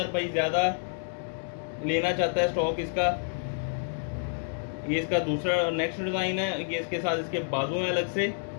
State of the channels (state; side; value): silent; right; digital silence